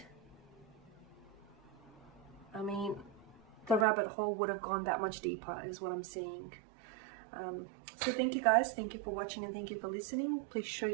I mean, the rabbit hole would have gone that much deeper is what I'm seeing. So thank you guys, thank you for watching and thank you for listening. Please show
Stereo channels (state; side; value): drops out; left; at 3.9 s